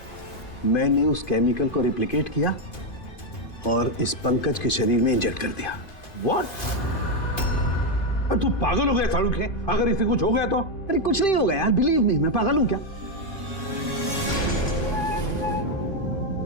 मैंने उस केमिकल को रिप्लिकेट किया और इस पंकज के शरीर में इंजेक्ट कर दिया। What? तू पागल हो गया शाहरुख है? अगर इसे कुछ हो गया तो? अरे कुछ नहीं होगा यार, बिलीव मी, मैं पागल हूं क्या?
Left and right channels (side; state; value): right; late; 2.5 ms